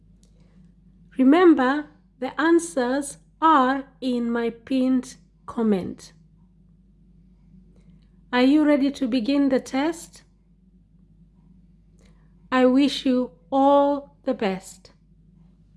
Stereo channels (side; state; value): both; identical; correlation 1.00